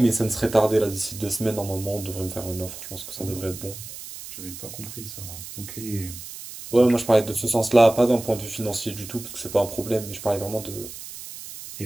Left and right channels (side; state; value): right; noise; hiss, 12 dB below the sound